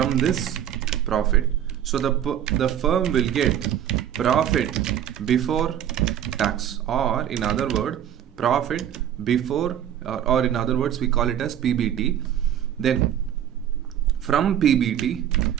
this profit. So the firm will get profit before tax, or in other words, profit before, or in other words, we call it as PBT. Then from PBT,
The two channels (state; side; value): quieter; left; 10.3 dB